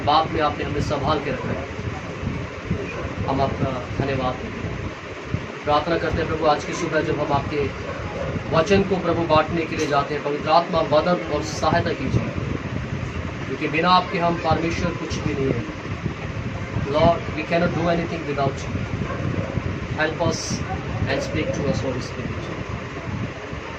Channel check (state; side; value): identical; both; correlation 1.00